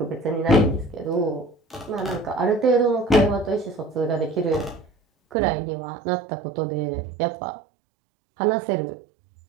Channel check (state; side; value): drops out; left; at 5.4 s